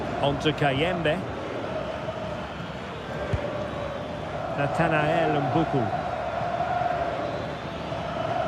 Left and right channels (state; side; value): identical; both; correlation 1.00